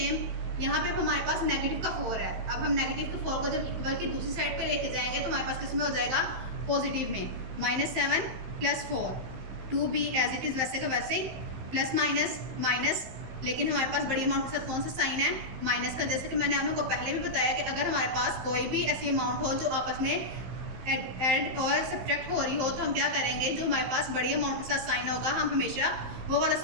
यहाँ पे हमारे पास नेगेटिव का 4 है, अब हम नेगेटिव के 4 को जब इक्वल की दूसरी साइड पे लेके जाएंगे तो हमारे पास किस में हो जाएगा, पॉजिटिव में। -7 plus 4, 2b as it is वैसे का वैसे ही, प्लस माइनस माइनस, लेकिन हमारे पास बड़ी अमाउंट के साथ कौन सा साइन है, माइनस का। जैसे कि मैंने आप लोगों को पहले भी बताया कि अगर हमारे पास कोई भी ऐसी अमाउंट हो जो आपस में ऐड और सब्ट्रैक्ट हो रही हो तो हम क्या करेंगे, जो हमारे पास बड़ी अमाउंट के साथ साइन होगा हम हमेशा वो वाला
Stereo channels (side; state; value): left; late; 15 ms